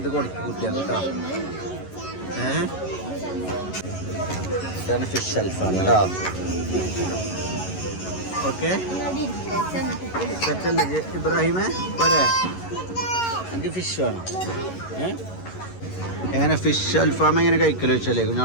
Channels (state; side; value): late; right; 11 ms